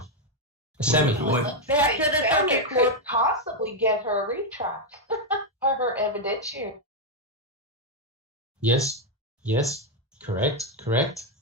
Sammy. Back to the circuit court. Possibly get her retract or her evidentiary. Yes, correct.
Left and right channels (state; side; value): normal; both; correlation 0.02